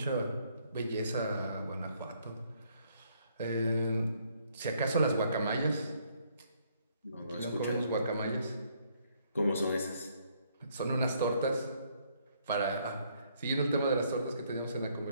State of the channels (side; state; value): both; inverted; correlation -0.68